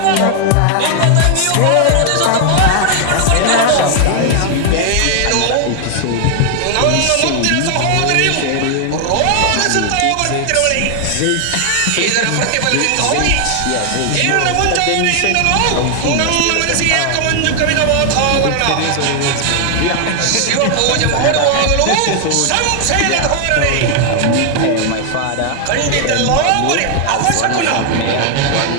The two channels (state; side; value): different; both; correlation 0.00